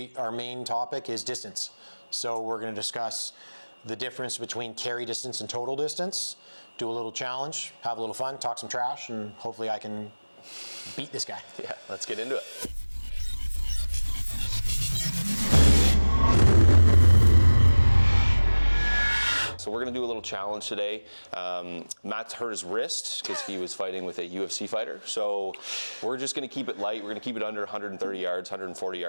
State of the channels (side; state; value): both; inverted; correlation -1.00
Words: our main topic is distance. So we're going to discuss the difference between carry distance and total distance, do a little challenge, have a little fun, talk some trash, and hopefully I can beat this guy. Yeah, let's get into it. So we're gonna do a little challenge today. Matt's hurt his wrist because he was fighting with a UFC fighter. So we're just gonna keep it light. We're gonna keep it under 130 yards, 140